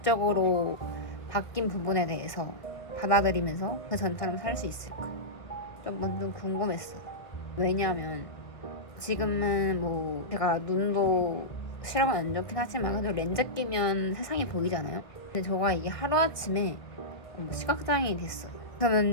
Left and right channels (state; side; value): late; right; 1.6 ms